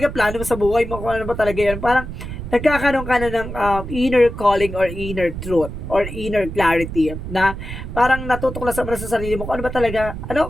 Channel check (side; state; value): right; noise; rumble, 8 dB below the sound